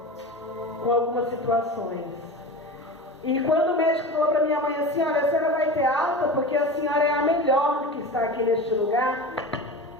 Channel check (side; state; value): both; normal; correlation 0.30